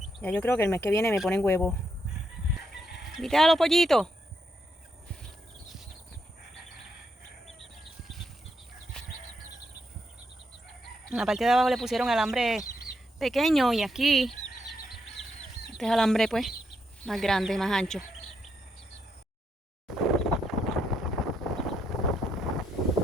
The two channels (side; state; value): both; normal; correlation 0.79